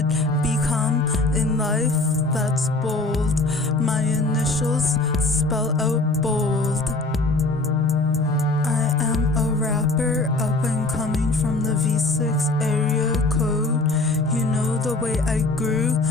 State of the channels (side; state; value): right; quieter; 3.0 dB